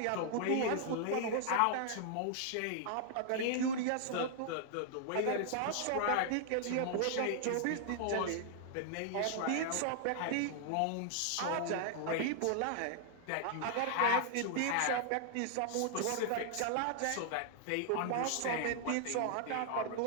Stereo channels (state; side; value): different; both; correlation -0.01